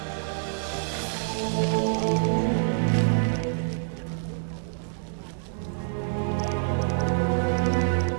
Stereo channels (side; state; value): left; silent; 60 dB below the other